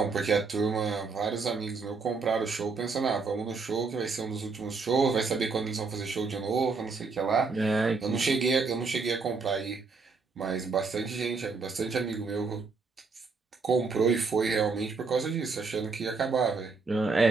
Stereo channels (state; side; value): quieter; left; 4.5 dB